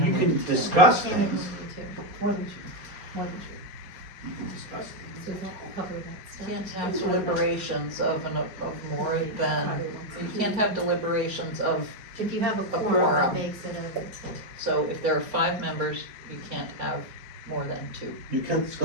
can have discuss Can't even things. do two. More than two. More than two. You can discuss things. So does that cover that stuff? Can't have deliberations of more than, you can't have deliberations of, If you have a A quorum, quorum. that makes it over. so if there are 5 members, you can't have more than 2. You can't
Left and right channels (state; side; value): late; left; 4.3 ms